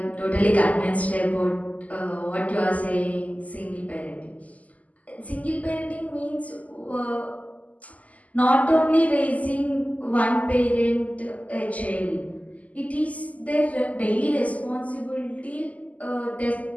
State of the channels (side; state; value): right; late; 0.074 ms